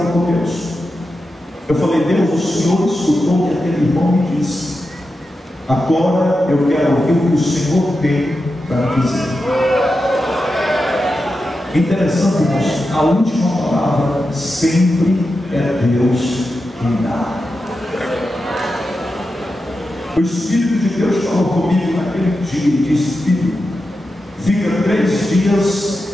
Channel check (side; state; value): both; normal; correlation 0.90